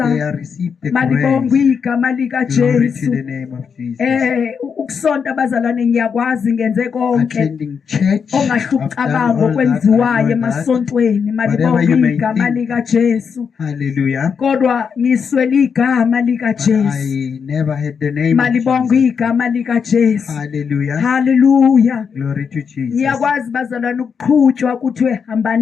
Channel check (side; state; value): right; quieter; 6.4 dB